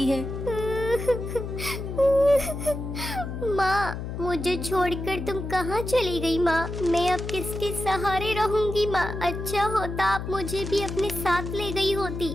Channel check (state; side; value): noise; left; hum, 6 dB below the sound